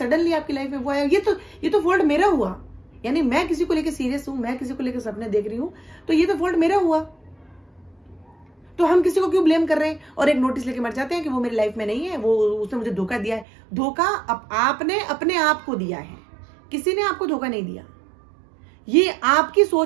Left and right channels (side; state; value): left; drops out; at 13.5 s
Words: आपकी लाइफ में वो आया। ये तो फॉल्ट मेरा हुआ, यानी मैं किसी को लेकर सीरियस हूं, मैं किसी को लेकर सपने देख रही हूं, तो ये तो फॉल्ट मेरा हुआ। तो हम किसी को क्यों ब्लेम कर रहे हैं और एक नोटिस लेके मर जाते हैं कि वो मेरी लाइफ में नहीं है, वो उसने मुझे धोखा दिया है। धोखा आपने अपने आप को दिया है, किसी ने आपको धोखा नहीं दिया। ये आपकी